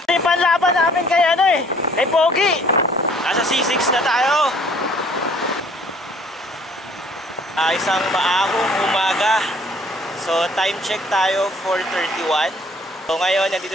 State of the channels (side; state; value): both; normal; correlation 0.57